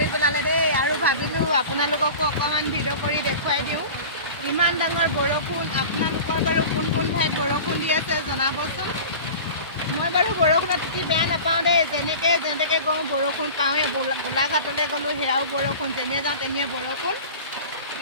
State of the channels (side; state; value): both; inverted; correlation -0.36